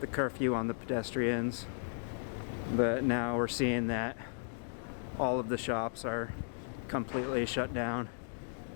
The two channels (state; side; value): silent; right; digital silence